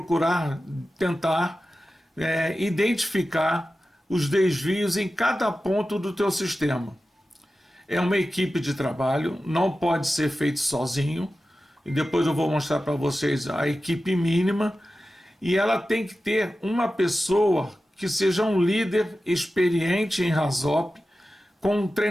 tentar identificar os desvios em cada ponto do teu sistema. É uma equipe de trabalho, não pode ser feito sozinho, e depois eu vou mostrar para vocês a equipe mínima, e ela tem que ter uma pessoa que seja um líder experiente em RASOP, com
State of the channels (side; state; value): both; normal; correlation 0.94